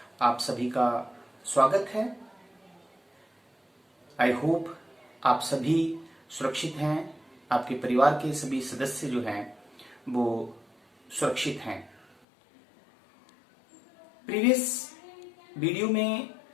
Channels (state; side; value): drops out; right; at 12.2 s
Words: आप सभी का स्वागत है। आई होप आप सभी सुरक्षित हैं, आपके परिवार के सभी सदस्य जो हैं वो सुरक्षित हैं। प्रीवियस वीडियो में